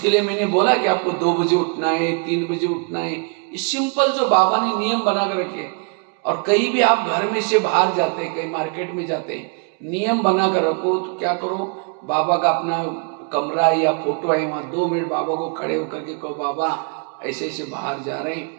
लिए मैंने बोला कि आपको 2 बजे उठना है, 3 बजे उठना है। ये सिंपल जो बाबा ने नियम बना कर रखे। और कहीं भी आप घर में से बाहर जाते हैं, कहीं मार्केट में जाते हैं, नियम बना कर रखो। तो क्या करो, बाबा का अपना कमरा या फोटो है, वहां 2 मिनट बाबा को खड़े होकर के कहो, बाबा ऐसे ऐसे बाहर जा रहे हैं,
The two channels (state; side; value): quieter; left; 39.8 dB